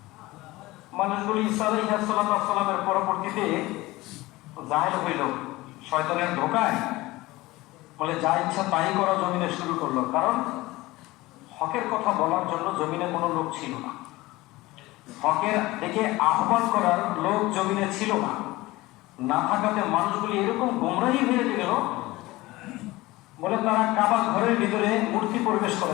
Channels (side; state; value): right; quieter; 19.6 dB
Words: মানুষগুলি ঈসা আলাইহিস সালামের পরবর্তীতে জাহেল হইল শয়তানের ধোকায়, বলে যা ইচ্ছা তাই করা জমিনে শুরু করলো। কারণ হকের কথা বলার জন্য জমিনে কোনো লোক ছিল না, হকের দিকে আহ্বান করার লোক জমিনে ছিল না। না থাকাতে মানুষগুলি এরকম গোমরাহি হয়ে গেল, বলে তারা কাবা ঘরের ভিতরে মূর্তি প্রবেশ